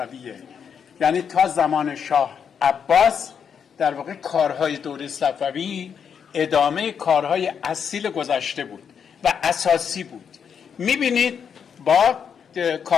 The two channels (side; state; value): right; quieter; 7.3 dB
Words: یعنی تا زمان شاه عباس در واقع کارهای دوره صفوی ادامه کارهای اصیل گذشته بود و اساسی بود. میبینید با